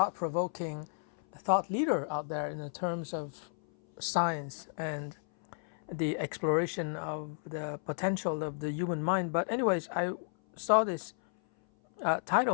thought leader out there in the terms of science and the exploration of the potential of the human mind. But anyways, I saw this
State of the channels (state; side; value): silent; right; 56 dB below the other